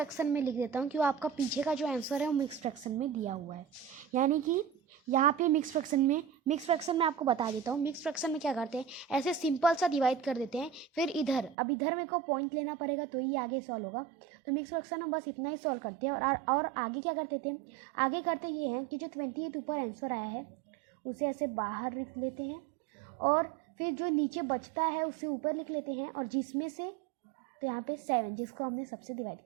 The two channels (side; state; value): left; drops out; at 11.6 s